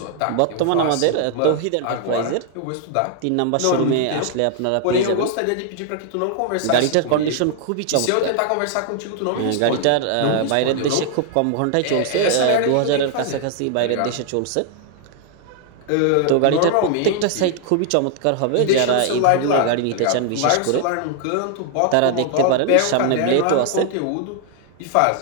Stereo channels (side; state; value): both; different; correlation 0.00